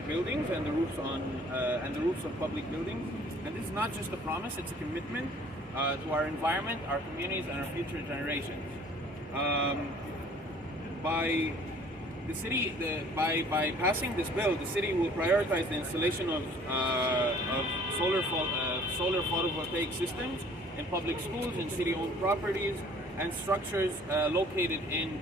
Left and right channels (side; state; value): both; normal; correlation 0.53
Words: buildings and the roofs of public buildings. And this is not just a promise; it's a commitment to our environment, our communities, and our future generations. By passing this bill, the city will prioritize the installation of solar photovoltaic systems in public schools, in city-owned properties, and structures located in